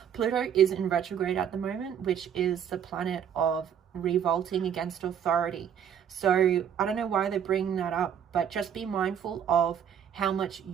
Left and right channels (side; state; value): left; quieter; 8.6 dB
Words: Pluto is in retrograde at the moment, which is the planet of revolting against authority. So I don't know why they're bringing that up, but just be mindful of how much